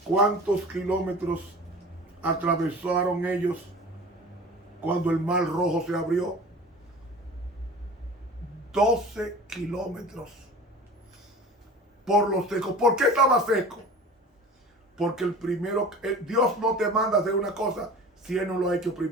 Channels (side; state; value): both; normal; correlation 0.39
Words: cuántos kilómetros atravesaron ellos cuando el mar rojo se abrió? 12 kilómetros por lo seco. ¿Por qué estaba seco? Porque Dios no te manda a hacer una cosa si Él no lo ha hecho